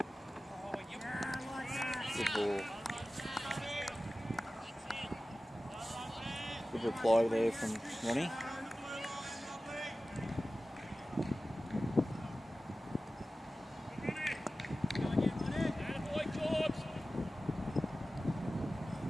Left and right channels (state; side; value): normal; both; correlation 0.96